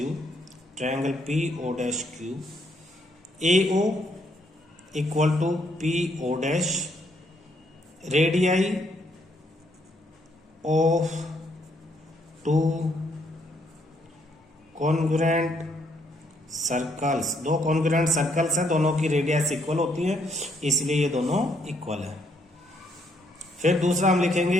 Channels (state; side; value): normal; both; correlation 0.71